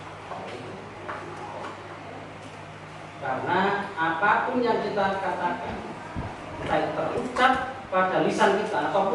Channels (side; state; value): both; identical; correlation 1.00